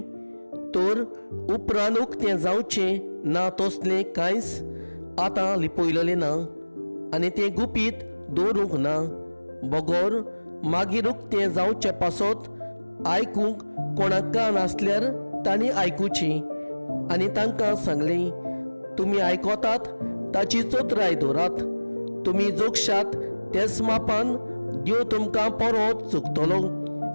तर उपरांत उक्तें जावचें ना तसलें कांयच आतां लिपयलेलें ना, आनी तें गुपीत दवरूंक ना. बगोर मागीर उक्तें जावचे पासत आयकूंक कोणाक कान आसल्यार तांणी आयकुचें. आनी तांकां सांगलें, तुमी आयकोतात ताची चोत्राय दवरात. तुमी जोगशात तेच मापान देव तुमकां परत चुकतलो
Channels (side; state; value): both; inverted; correlation -1.00